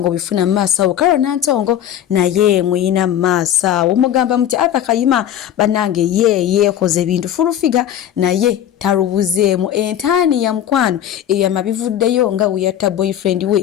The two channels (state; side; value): quieter; right; 10.7 dB